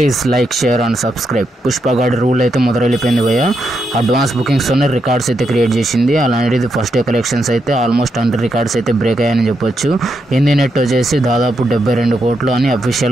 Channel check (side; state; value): both; normal; correlation 0.82